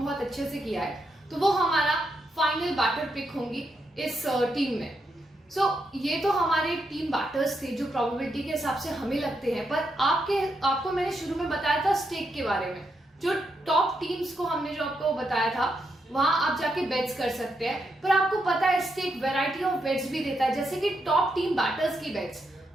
बहुत अच्छे से किया है, तो वो हमारा फाइनल बैटर पिक होंगी इस टीम में। सो ये तो हमारे टीम बैटर्स थे जो प्रोबेबिलिटी के हिसाब से हमें लगते हैं, पर आपको मैंने शुरू में बताया था स्टेक के बारे में, जो टॉप टीम्स को हमने जो आपको बताया था वहां आप जाके बेट्स कर सकते हैं, पर आपको पता है स्टेक वैरायटी ऑफ बेट्स भी देता है, जैसे कि टॉप टीम बैटर्स की बेट्स,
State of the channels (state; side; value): normal; both; correlation 0.81